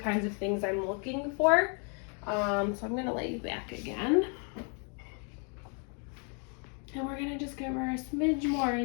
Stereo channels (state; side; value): quieter; right; 39.6 dB